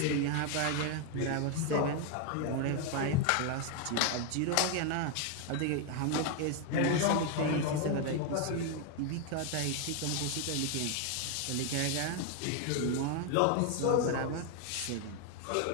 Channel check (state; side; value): different; both; correlation 0.01